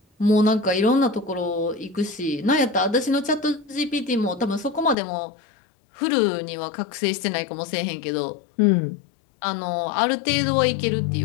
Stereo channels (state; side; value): drops out; right; at 5.0 s